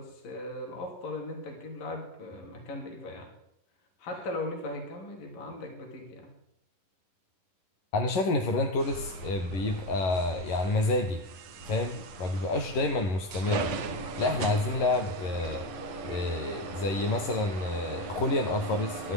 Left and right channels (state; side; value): late; right; 11 ms